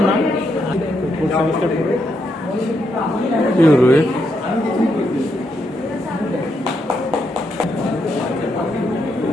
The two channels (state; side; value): normal; both; correlation 0.80